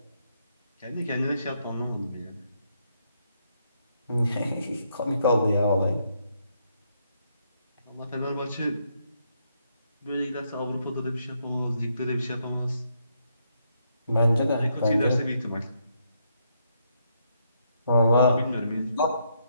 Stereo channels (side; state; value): both; inverted; correlation -0.76